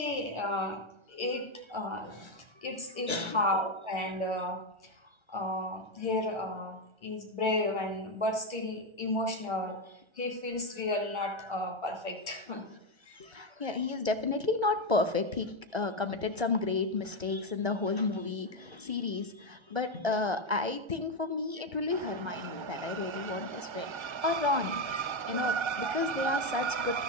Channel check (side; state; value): left; late; 1.3 ms